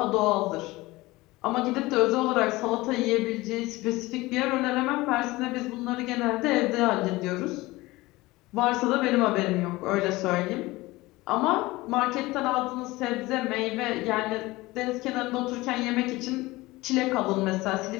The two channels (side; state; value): right; quieter; 20.2 dB